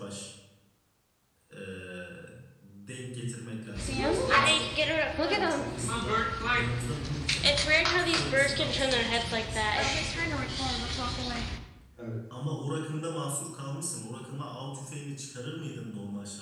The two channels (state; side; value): identical; both; correlation 1.00